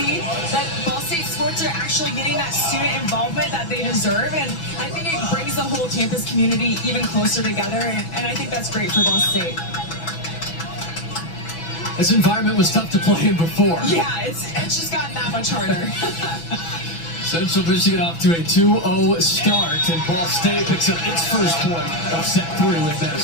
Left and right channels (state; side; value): late; right; 6.0 ms